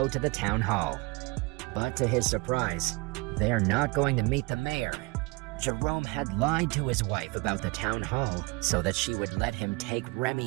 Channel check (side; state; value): left; quieter; 26.6 dB